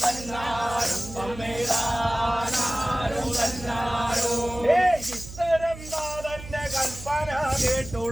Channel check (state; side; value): noise; right; hum, 13 dB below the sound